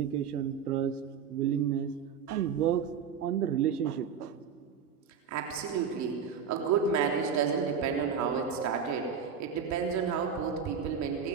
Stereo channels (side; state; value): left; quieter; 7.0 dB